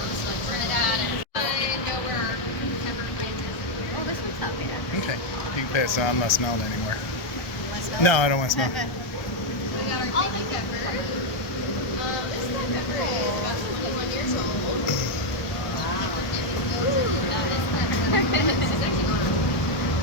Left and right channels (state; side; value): late; right; 1.4 ms